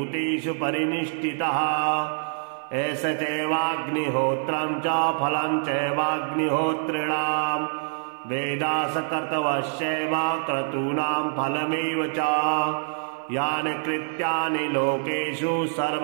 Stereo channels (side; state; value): left; silent; 56 dB below the other